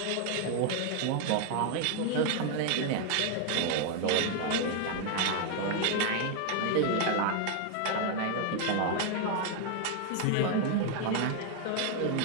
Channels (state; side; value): different; both; correlation 0.01